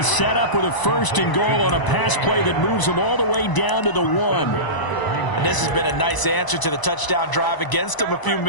set up with a 1st and goal on a pass play that moves them all the way down to the 1. And this has been a nice answer to the touchdown drive against them a few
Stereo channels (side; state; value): right; late; 1.0 ms